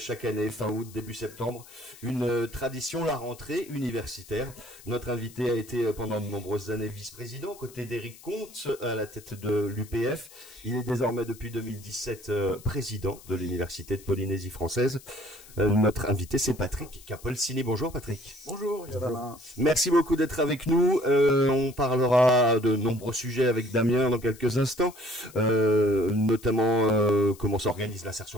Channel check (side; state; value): left; noise; hiss, 21 dB below the sound